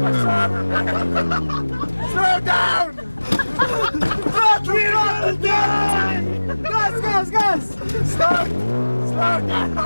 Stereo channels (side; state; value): both; inverted; correlation -1.00